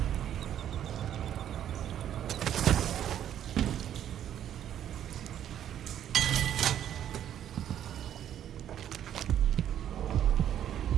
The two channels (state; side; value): quieter; left; 10.4 dB